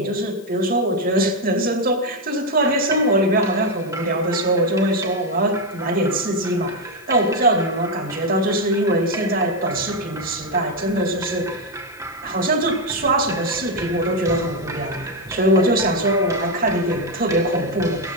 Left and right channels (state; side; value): noise; left; hiss, 26 dB below the sound